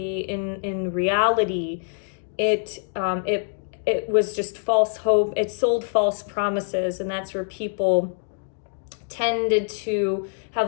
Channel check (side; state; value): right; silent; digital silence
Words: in reality, it was just false hope. It sold false promises, and that's where people tended to